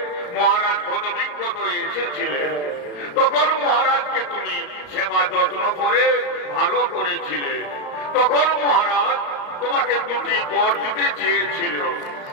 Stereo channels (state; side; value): late; right; 34 ms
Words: মহারাজ কত বিজ্ঞত এসেছিলেন, তখন মহারাজকে তুমি সেবা যত্ন করে ভালো করেছিলে। তখন মহারাজ তোমাকে দুটি বর দিতে চেয়েছিল।